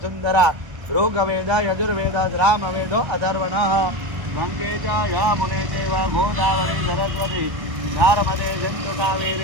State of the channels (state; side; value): late; left; 1.1 ms